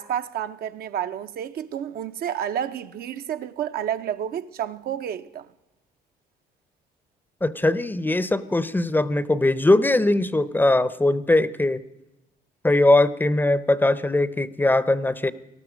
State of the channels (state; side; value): normal; both; correlation 0.83